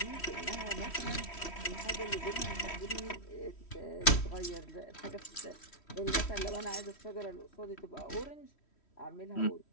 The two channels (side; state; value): right; late; 3.1 ms